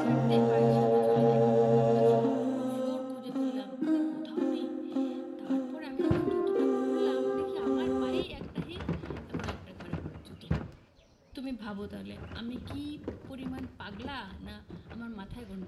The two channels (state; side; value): identical; both; correlation 1.00